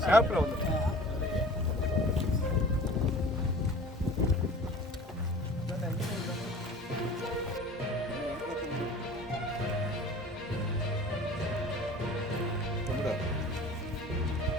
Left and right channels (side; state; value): both; normal; correlation 0.43